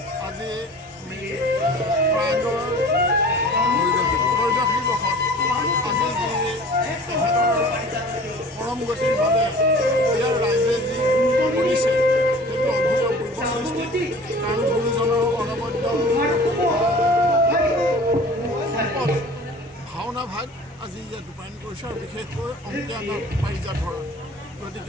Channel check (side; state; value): both; normal; correlation 0.44